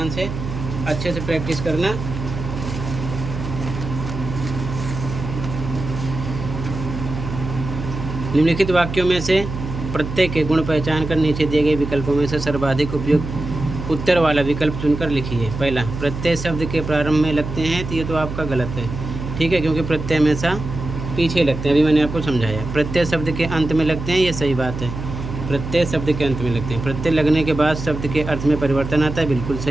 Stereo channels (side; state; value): right; noise; hum, 7 dB below the sound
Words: से, अच्छे से प्रैक्टिस करना। निम्नलिखित वाक्यों में से प्रत्येक के गुण पहचान कर नीचे दिए गए विकल्पों में से सर्वाधिक उपयुक्त उत्तर वाला विकल्प चुनकर लिखिए। पहला, प्रत्यय शब्द के प्रारंभ में लगते हैं, तो ये तो आपका गलत है। ठीक है, क्योंकि प्रत्यय हमेशा पीछे लगते हैं, अभी मैंने आपको समझाया। प्रत्यय शब्द के अंत में लगते हैं, ये सही बात है। प्रत्यय शब्द के अंत में लगते हैं। प्रत्यय लगने के बाद शब्द के अर्थ में परिवर्तन आता है, बिल्कुल